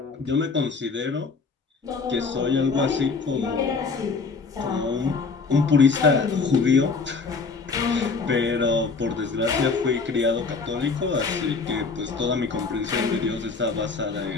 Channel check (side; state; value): right; quieter; 4.6 dB